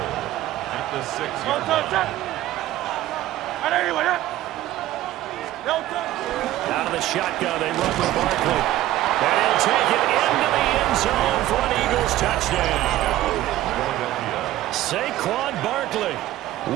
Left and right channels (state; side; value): quieter; left; 14.5 dB